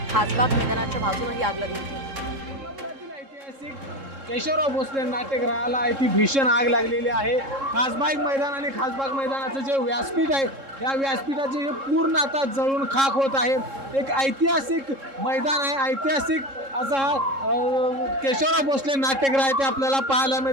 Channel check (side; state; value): left; late; 3.7 ms